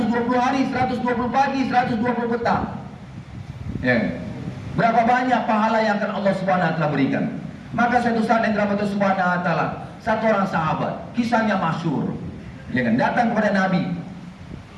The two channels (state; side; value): identical; both; correlation 1.00